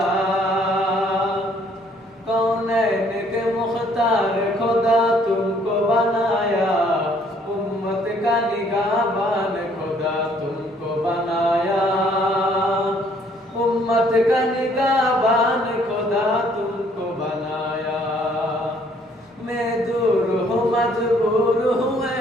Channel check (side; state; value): both; normal; correlation 0.63